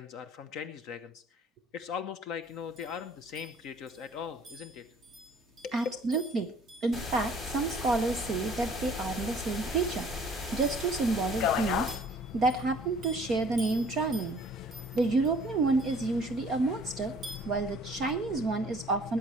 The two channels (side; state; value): both; normal; correlation 0.54